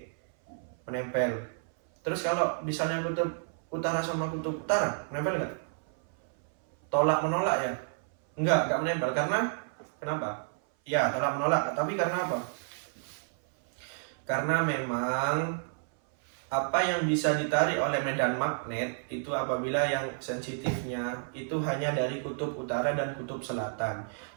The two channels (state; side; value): silent; left; 57 dB below the other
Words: Menempel. Terus kalau misalnya kutub utara sama kutub utara, menempel nggak? Tolak menolak ya? Enggak menempel. Karena kenapa? Ya, tolak menolak. Tapi karena apa? Karena memang apa yang bisa ditarik oleh medan magnet itu apabila yang sensitifnya itu hanya dari kutub utara dan kutub selatan.